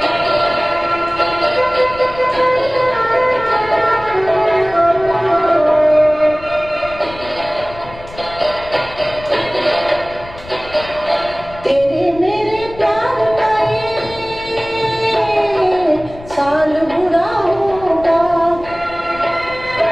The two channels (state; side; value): noise; left; rumble, 17 dB below the sound